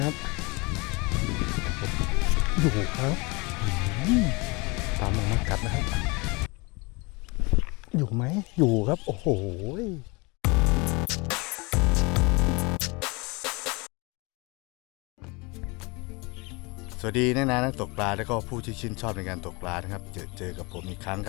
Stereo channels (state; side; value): quieter; right; 27.4 dB